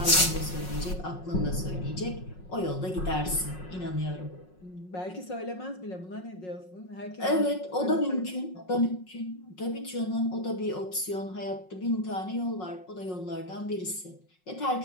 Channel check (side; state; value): right; late; 5.5 ms